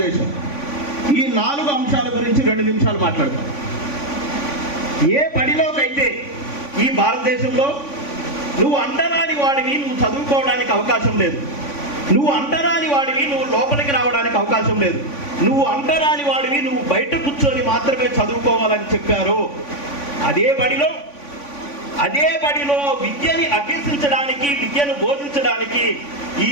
ఈ 4 అంశాల గురించి 2 నిమిషాలు మాట్లాడతాం. ఏ బడిలోకైతే ఈ భారతదేశంలో నువ్వు అంటరాని వాడివి, నువ్వు చదువుకోవడానికి అవకాశం లేదు. నువ్వు అంటరాని వాడివి, నువ్వు లోపలికి రావడానికి అవకాశం లేదు. నువ్వు అంటరాని వాడివి, నువ్వు బయట కూర్చొని మాత్రమే చదువుకోవాలని చెప్పారు. అదే బడిలో విద్యని అభ్యసించడానికి, విద్యను బోధించడానికి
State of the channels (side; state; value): right; late; 3.5 ms